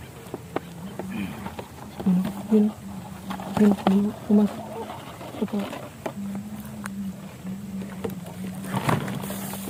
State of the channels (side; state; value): both; identical; correlation 1.00